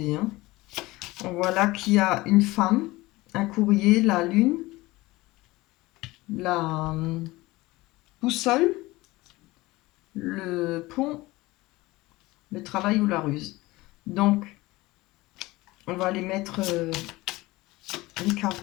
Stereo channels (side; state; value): right; quieter; 20.2 dB